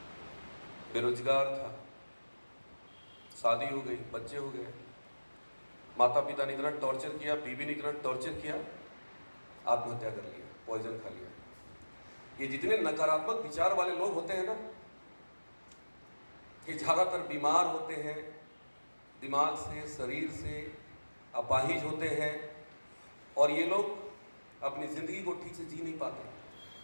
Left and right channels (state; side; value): inverted; both; correlation -1.00